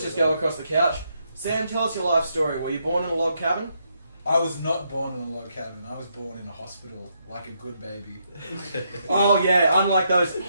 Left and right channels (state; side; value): inverted; both; correlation -0.78